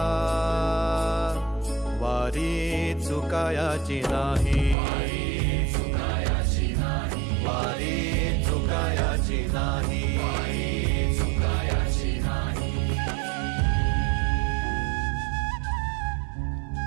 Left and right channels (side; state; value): left; drops out; at 4.8 s